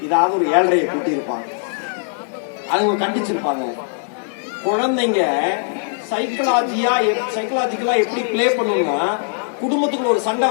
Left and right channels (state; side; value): silent; right; 64 dB below the other